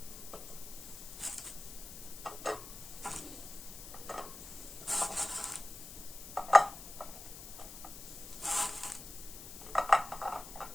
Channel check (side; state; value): left; noise; hiss, 12 dB below the sound